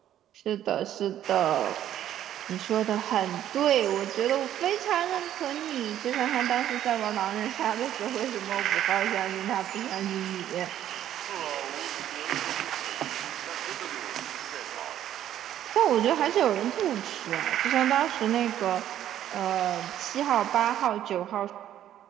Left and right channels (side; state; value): left; quieter; 11.5 dB